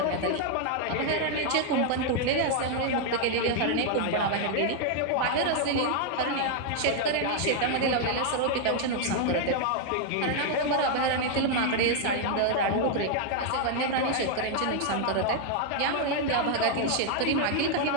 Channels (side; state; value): both; different; correlation 0.00